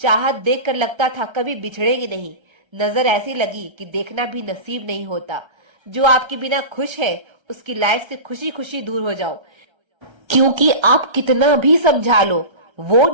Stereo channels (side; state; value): left; late; 1.3 ms